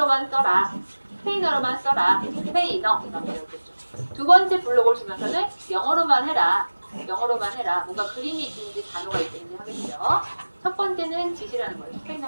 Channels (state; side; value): inverted; both; correlation -1.00